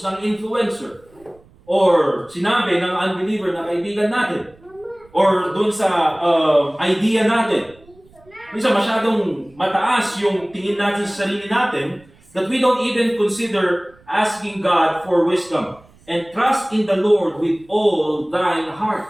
ng influencer, or sinabi ng unbeliever na kaibigan natin, or dun sa idea natin. Minsan masyadong mataas yung tingin natin sa sarili natin that we don't even consider asking God for wisdom. And trust in the Lord with all thine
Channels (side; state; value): right; noise; rumble, 28 dB below the sound